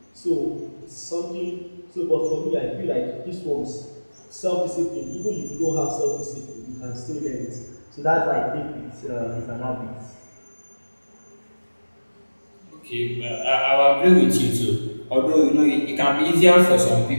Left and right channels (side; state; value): both; inverted; correlation -1.00